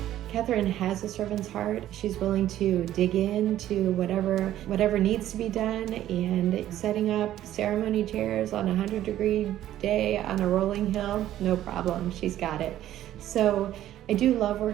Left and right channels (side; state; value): left; quieter; 12.8 dB